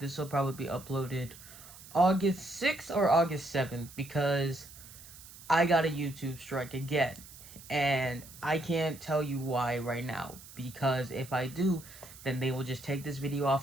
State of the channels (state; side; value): noise; right; hiss, 18 dB below the sound